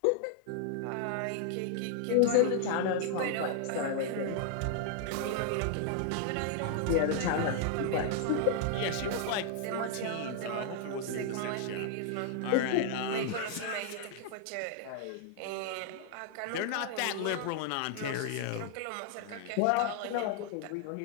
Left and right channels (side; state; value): both; different; correlation 0.00